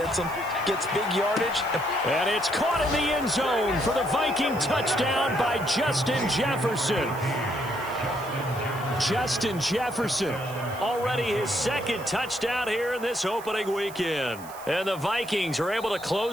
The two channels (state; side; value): noise; right; hiss, 18 dB below the sound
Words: them, gets big yardage. And it's caught in the end zone for the Viking touchdown by Justin Jefferson. Justin Jefferson, already his 2nd touchdown here in this opening weekend. And the Vikings are able to